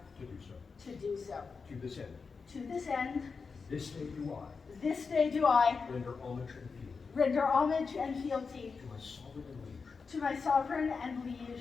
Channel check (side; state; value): right; quieter; 5.0 dB